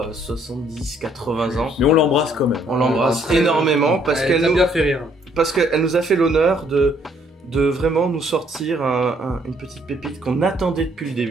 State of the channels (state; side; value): normal; both; correlation 0.66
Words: 70-80 ans. Mais on l'embrasse quand même. On l'embrasse Après, énormément parce Elle qu'elle t'a nous, bien fait rire. parce qu'elle nous a fait l'honneur de vraiment nous sortir une petite pépite qu'on attendait depuis le